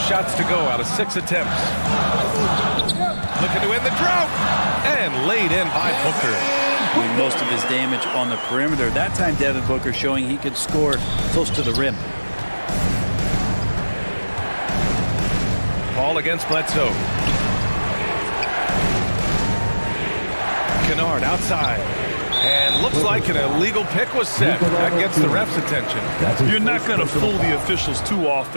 to go out of 6 attempts. Looking to end the drought. And laid in by Booker. Doing most of his damage on the perimeter. That time, Devin Booker showing he could score close to the rim. Paul against Bledsoe. Kennard outside. And looks like an illegal pick was set. That gets the ref's attention. You're not going to fool the officials too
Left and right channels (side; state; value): both; inverted; correlation -1.00